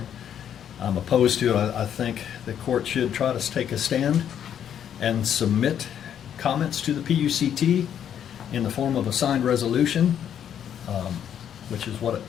I'm opposed to it. I think the court should try to take a stand and submit comments to the PUCT in the form of a signed resolution, which is what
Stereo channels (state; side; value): quieter; right; 9.3 dB